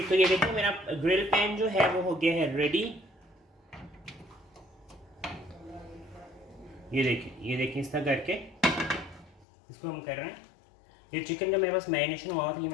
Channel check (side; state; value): right; drops out; at 9.5 s